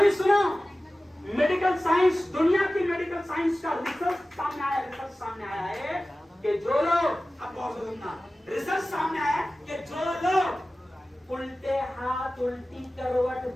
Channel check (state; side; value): normal; both; correlation 0.96